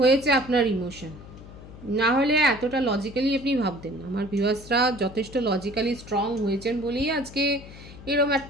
আপনার ইমোশন, না হলে এতটা লজিক্যালি আপনি ভাবতেন না। আমার ভিউয়ার্সরা যথেষ্ট লজিক্যালি স্ট্রং হয়েছেন বলেই আজকে এরকম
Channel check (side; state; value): left; noise; hum, 17 dB below the sound